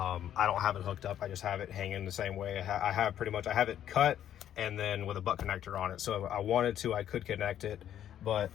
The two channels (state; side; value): quieter; right; 10.7 dB